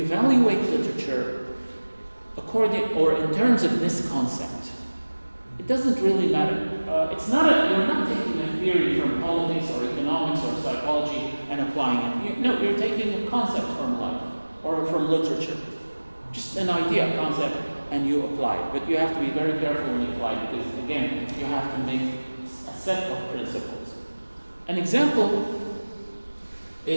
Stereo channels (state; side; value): inverted; both; correlation -1.00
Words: literature according or in terms of this concept. It doesn't really matter. You're not taking a theory from politics or economics or psychology and applying it. You're taking a concept from life or from literature. Just an idea, a concept, and you apply it. But you have to be very careful when you apply it because, again, you have to make a set of principles. An example